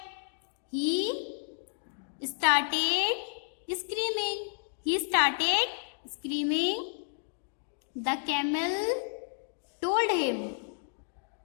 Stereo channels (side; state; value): right; silent; digital silence